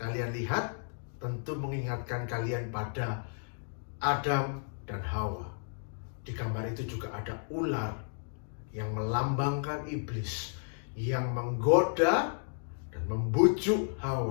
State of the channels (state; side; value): silent; right; digital silence